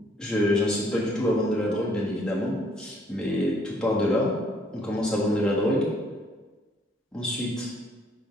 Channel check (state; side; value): normal; both; correlation 0.64